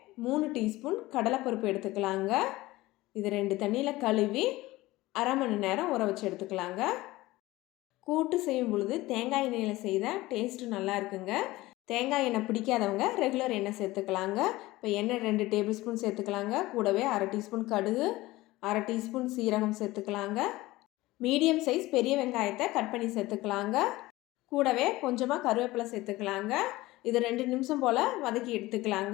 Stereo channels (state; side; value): quieter; right; 18.7 dB